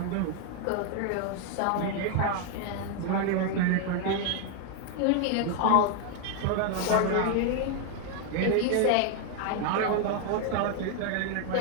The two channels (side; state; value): both; different; correlation 0.00